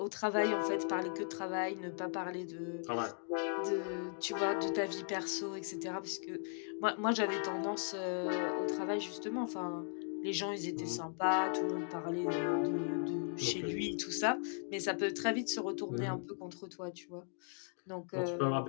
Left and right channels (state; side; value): silent; right; 53 dB below the other